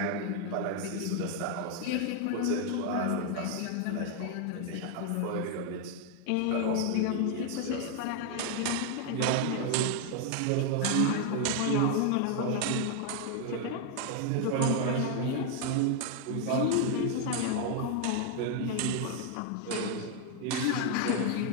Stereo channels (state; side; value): different; both; correlation 0.00